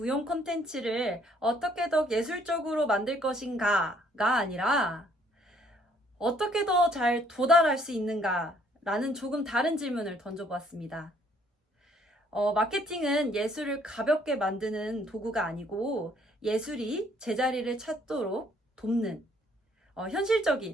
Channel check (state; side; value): normal; both; correlation 0.64